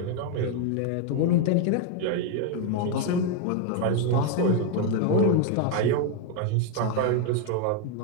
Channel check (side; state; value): both; different; correlation 0.01